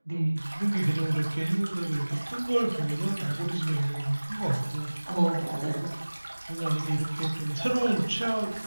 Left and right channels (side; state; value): both; inverted; correlation -1.00